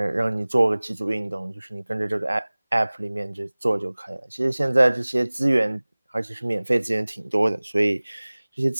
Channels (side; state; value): both; inverted; correlation -1.00